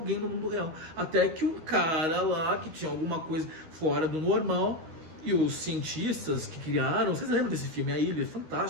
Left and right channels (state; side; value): late; left; 13 ms